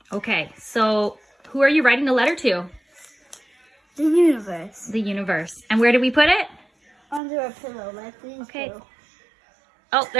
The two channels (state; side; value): drops out; left; at 7.2 s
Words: Okay, so who are you writing the letter to? The universe. The universe. And where did we put it? Under a pillow, like these Okay. two. Oh,